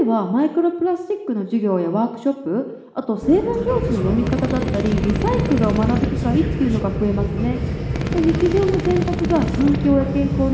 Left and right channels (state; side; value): identical; both; correlation 1.00